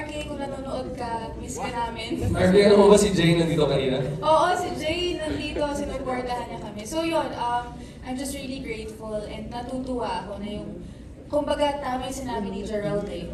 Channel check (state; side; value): identical; both; correlation 1.00